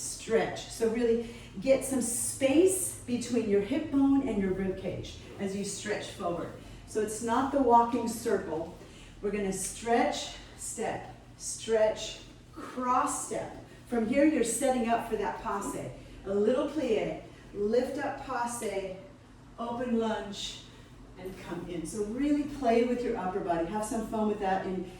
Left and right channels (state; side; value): identical; both; correlation 1.00